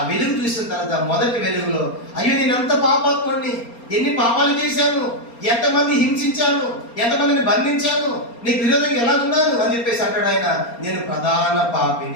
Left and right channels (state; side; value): late; right; 4.3 ms